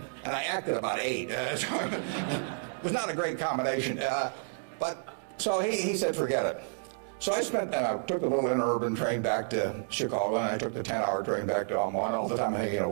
acted about 8. So it was not a great combination. But so he said, forget it. So I took the little interurban train back to Chicago, and I took the 10-hour train back to Omaha. And all the time I'm thinking,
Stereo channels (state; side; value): silent; left; digital silence